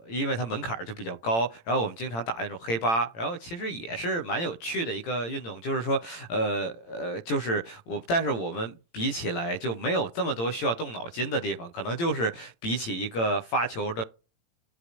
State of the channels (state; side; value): late; right; 18 ms